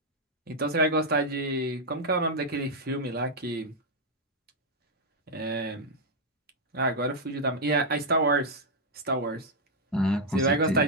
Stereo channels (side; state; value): both; normal; correlation -0.01